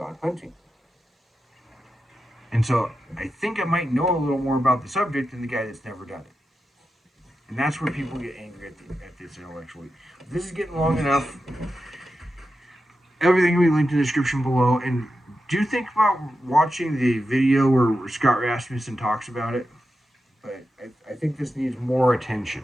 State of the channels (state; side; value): normal; both; correlation 0.90